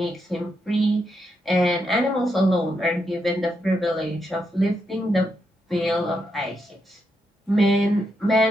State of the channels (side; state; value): both; normal; correlation 0.82